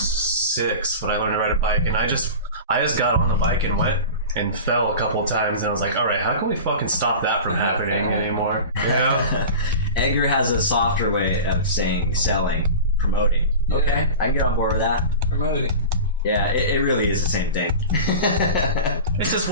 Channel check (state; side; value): inverted; both; correlation -0.32